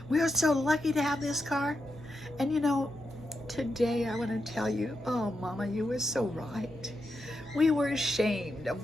We are so lucky to have this car. And you know, today I want to tell you, oh, Mama, you were so right. We were ashamed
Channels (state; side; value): normal; both; correlation 0.86